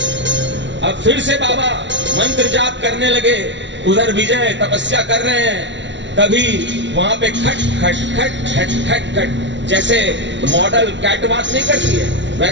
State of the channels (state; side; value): late; left; 0.53 ms